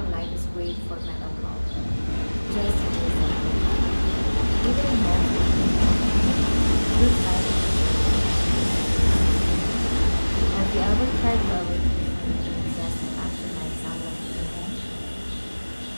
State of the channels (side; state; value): both; inverted; correlation -1.00